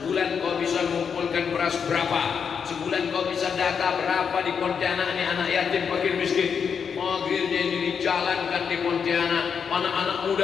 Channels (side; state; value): right; quieter; 6.7 dB